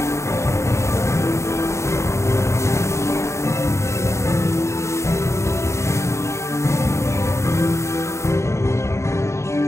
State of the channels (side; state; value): right; late; 0.14 ms